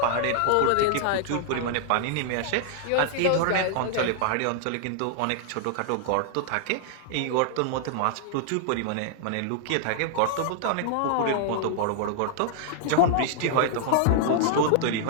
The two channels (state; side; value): different; both; correlation -0.01